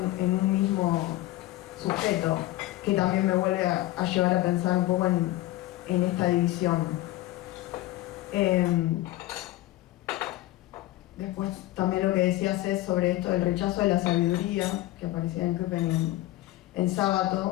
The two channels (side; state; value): right; quieter; 16.5 dB